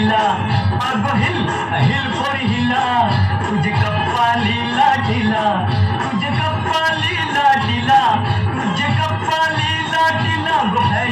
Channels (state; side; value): identical; both; correlation 1.00